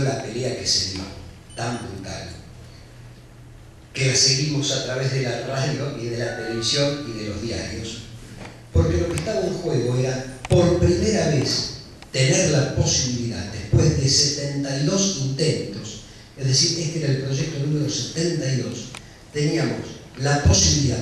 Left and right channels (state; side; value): identical; both; correlation 1.00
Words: pelea que se dio, tan brutal, que la seguimos a través de la radio y de la televisión y de los diarios, porque lo que estaba en juego era, por primera vez, tener la posibilidad, después de 72 intentos, es decir, este era el proyecto número 72, teníamos la